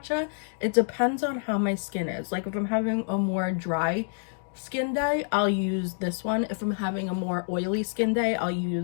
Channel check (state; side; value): silent; right; digital silence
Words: It depends on how my skin is. Like if I'm having a more dry skin day, I'll use this one. If I'm having a more oily skin day, I'll